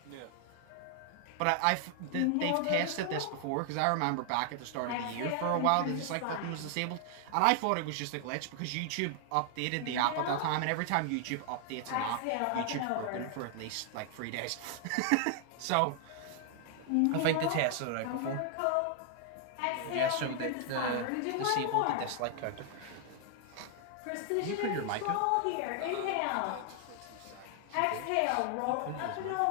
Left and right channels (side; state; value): both; different; correlation 0.00